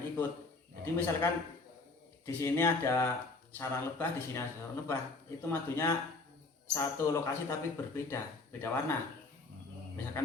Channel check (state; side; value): quieter; right; 3.5 dB